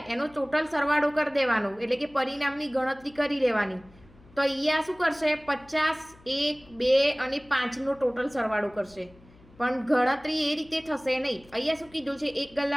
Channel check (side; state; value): left; noise; hum, 26 dB below the sound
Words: એનો ટોટલ સરવાળો કરી દેવાનો, એટલે કે પરિણામની ગણતરી કરી લેવાની. તો અહીંયા શું કરશે? 50, 1, 2 અને 5નો ટોટલ સરવાળો કરશે, પણ ગણતરી એ રીતે થશે નહીં. અહીંયા શું કીધું છે? એક